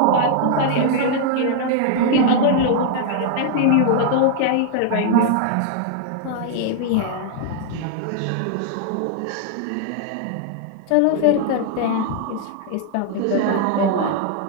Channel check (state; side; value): different; both; correlation 0.00